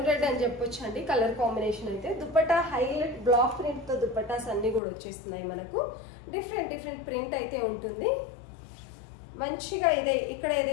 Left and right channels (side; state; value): right; drops out; at 4.8 s